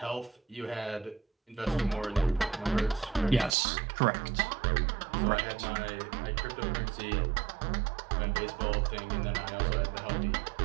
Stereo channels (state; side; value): drops out; left; at 3.6 s